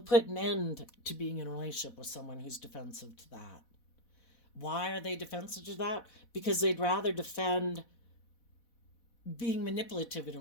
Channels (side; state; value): right; late; 4.1 ms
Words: an end to being in a relationship with someone who's defensive to that. Why are they defensive to that? Because they'd rather defend being manipulative in a